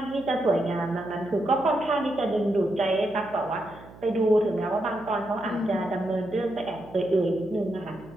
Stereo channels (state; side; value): noise; right; hum, 20 dB below the sound